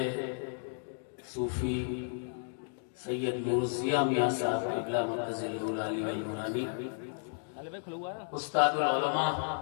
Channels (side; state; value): right; silent; digital silence